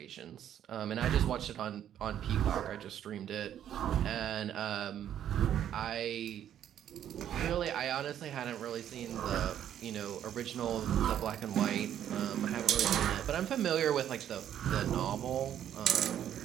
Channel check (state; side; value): quieter; left; 10.4 dB